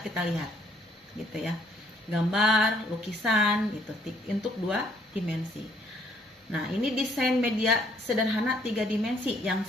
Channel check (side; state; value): both; normal; correlation 0.65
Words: lihat. Gitu ya. Gambar, lukisan gitu untuk 2 dimensi. Nah, ini desain media sederhana 3 dimensi yang